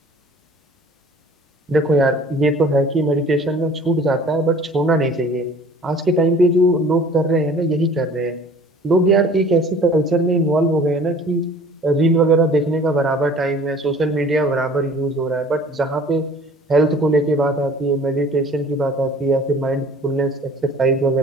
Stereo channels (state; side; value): normal; both; correlation 0.49